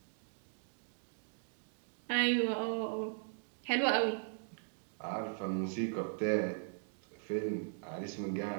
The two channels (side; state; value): left; silent; digital silence